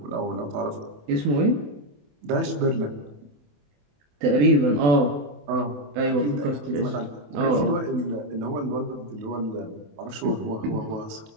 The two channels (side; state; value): left; late; 27 ms